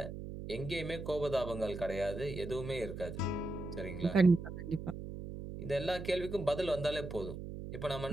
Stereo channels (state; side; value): noise; right; hum, 8 dB below the sound